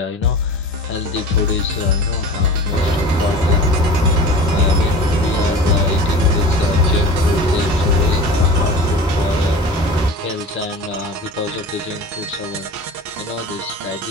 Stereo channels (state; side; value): normal; both; correlation 0.36